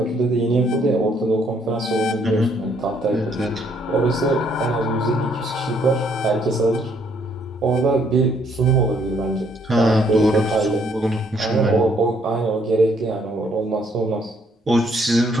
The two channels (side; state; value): both; normal; correlation 0.68